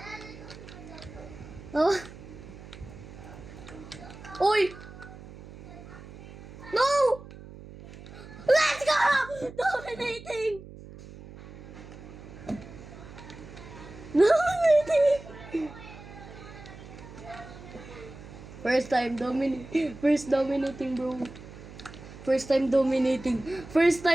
Oh. Uy! No! Let's go! Dominating! Dominating! First time dominating. First dominating, bro. First time dominating. First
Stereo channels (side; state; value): right; noise; hum, 16 dB below the sound